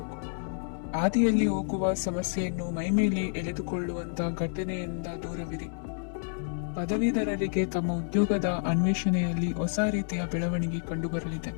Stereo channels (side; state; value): right; silent; 58 dB below the other